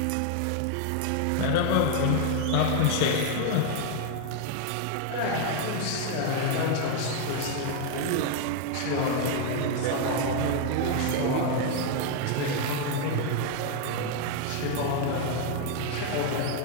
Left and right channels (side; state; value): both; different; correlation 0.00